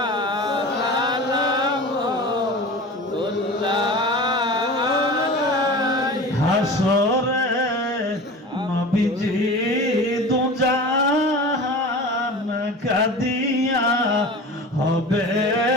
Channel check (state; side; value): normal; both; correlation 0.35